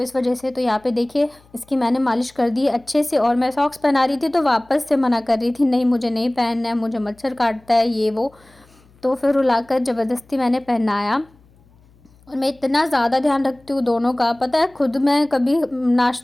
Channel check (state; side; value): noise; left; hum, 30 dB below the sound